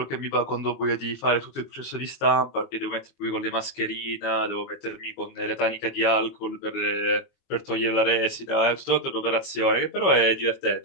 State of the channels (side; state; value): right; late; 22 ms